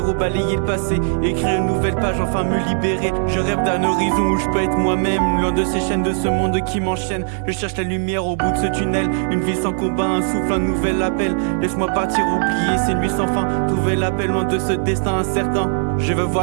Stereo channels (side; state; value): left; silent; 56 dB below the other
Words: balayer le passé. Écrire une nouvelle page, enfin me libérer. Je rêve d'un horizon où je peux être moi-même, loin de ces chaînes de ce monde qui m'enchaîne. Je cherche la lumière au bout de ce tunnel. Une vie sans combat, un souffle, un nouvel appel. Laisse-moi partir, oublier ces nuits sans fin. Trouver l'appel loin de ce destin incertain. Je veux